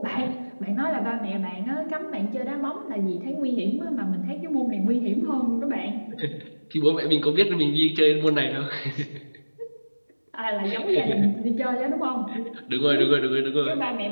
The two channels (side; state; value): both; inverted; correlation -1.00